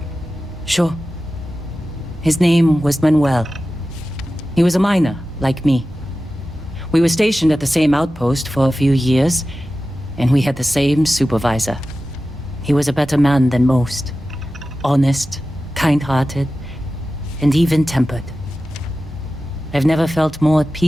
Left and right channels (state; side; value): normal; both; correlation 0.94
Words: Sure. His name was Manuel. He was a miner, like me. We were stationed at the same outpost for a few years, and we had the same supervisor. He was a better man than most. Honest, kind-hearted, and even-tempered. I've never felt more at